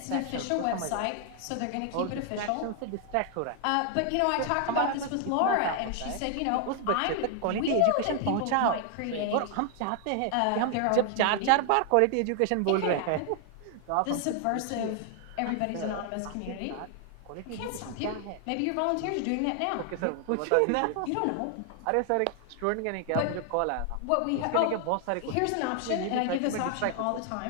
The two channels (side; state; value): both; different; correlation 0.00